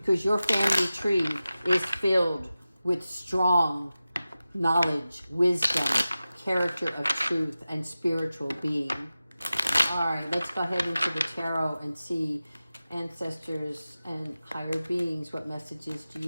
your family tree is filled with strong knowledge, wisdom, character of truth, and spiritual being. All right, let's go ahead into the tarot and see ancestors and higher beings. What messages do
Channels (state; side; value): inverted; both; correlation -0.95